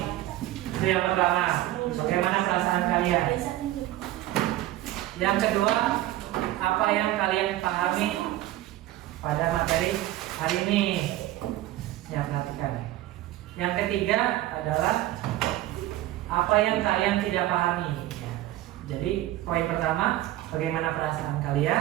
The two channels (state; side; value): quieter; left; 15.1 dB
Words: Itu yang pertama. Bagaimana perasaan kalian? Yang kedua, apa yang kalian pahami pada materi hari ini? Ya, perhatikan. Yang ketiga adalah apa yang kalian tidak pahami. Ya. Jadi poin pertama, bagaimana perasaan